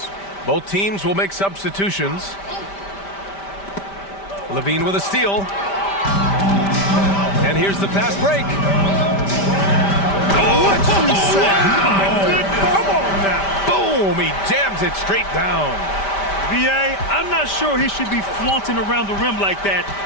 Both teams will make substitutions. Levine with a steal. And here's the fast break. What you say? Come on now. Boom! He jams it straight down. B.A., I'm not sure he should be flaunting around the rim like that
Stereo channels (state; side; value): late; right; 5.1 ms